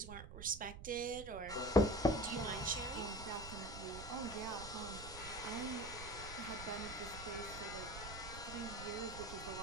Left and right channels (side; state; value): right; noise; rumble, 11 dB below the sound